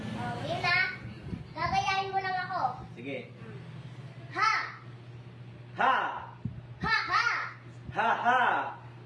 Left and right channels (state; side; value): identical; both; correlation 1.00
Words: Oh, ngayon na. Gagayahin mo lang ako. Sige. Ha! Ha! Ha ha! Ha ha!